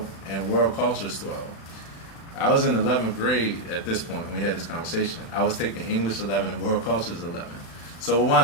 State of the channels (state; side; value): late; right; 36 ms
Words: and World Cultures 12. I was in 11th grade at this point when we had this conversation. I was taking English 11 and World Cultures 11. So what